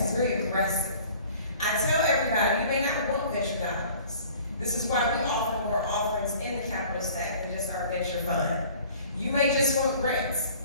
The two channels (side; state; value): both; inverted; correlation -0.49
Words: It's very aggressive. I tell everybody, you may not want venture dollars. This is why we offer more offerings in the capital stack than just our venture fund. You may just want